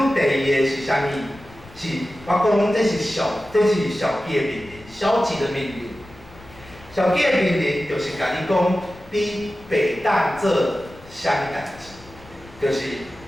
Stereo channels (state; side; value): noise; left; rumble, 22 dB below the sound